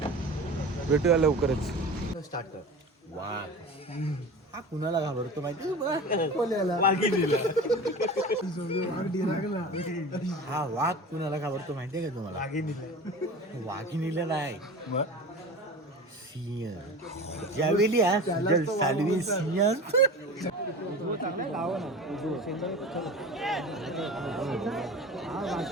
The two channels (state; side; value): normal; both; correlation 0.34